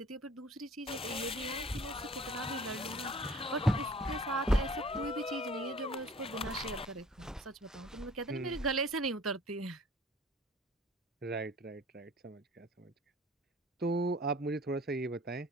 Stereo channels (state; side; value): normal; both; correlation 0.50